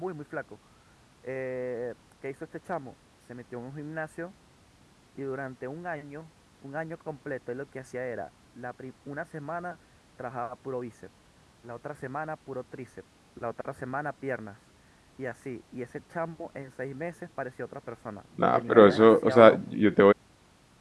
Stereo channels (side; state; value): both; identical; correlation 1.00